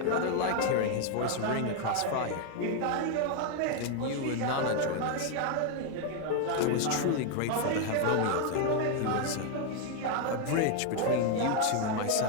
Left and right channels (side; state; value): both; different; correlation 0.01